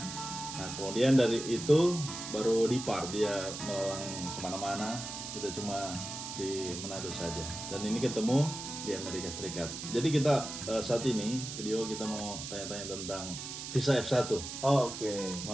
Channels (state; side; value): noise; right; hiss, 8 dB below the sound